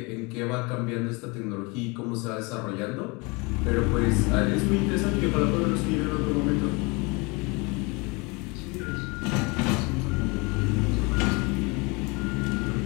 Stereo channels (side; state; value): right; quieter; 28.1 dB